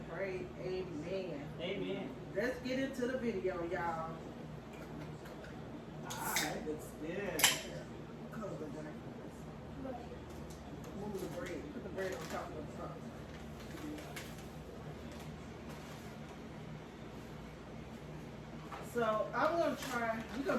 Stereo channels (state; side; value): identical; both; correlation 1.00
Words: pray. Amen. Amen. Let's get into the video, y'all. Alright, looks good. Close the bread. Move the bread. Put the bread on top of the sauce. So we're gonna